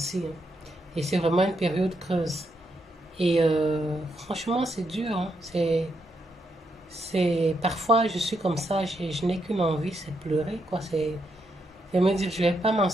hein. Et c'est vraiment une période creuse. Et franchement, c'est dur, hein. Parfois, je suis comme ça, je n'ai qu'une envie, c'est pleurer, quoi. C'est me dire, je vais pas m'en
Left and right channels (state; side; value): normal; both; correlation 0.80